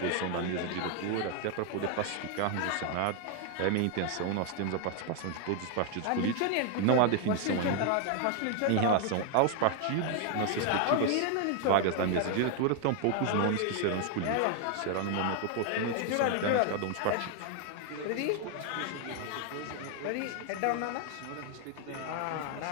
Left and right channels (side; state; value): both; different; correlation 0.00